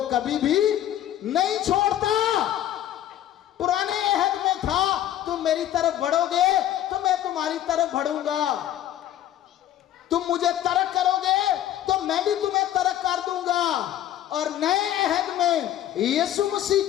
कभी भी नहीं छोड़ता। पुराने अहद में था तुम मेरी तरफ बढ़ोगे तो मैं तुम्हारी तरफ बढ़ूंगा, तुम मुझे तरक करोगे तो मैं भी तुम्हें तरक कर दूंगा। और नए अहद में यीशु मसीह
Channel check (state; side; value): quieter; right; 12.1 dB